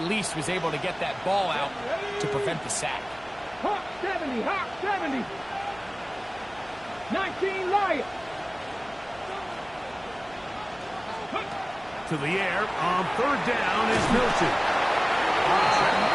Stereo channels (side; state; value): right; noise; hum, 25 dB below the sound